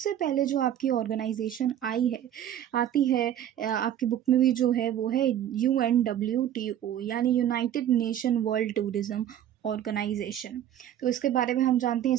पहले जो आपकी ऑर्गेनाइजेशन आती है आपकी बुक में भी जो है वो है UNWTO, यानी United Nation World Tourism Organization. तो इसके बारे में हम जानते हैं,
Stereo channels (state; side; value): quieter; left; 10.8 dB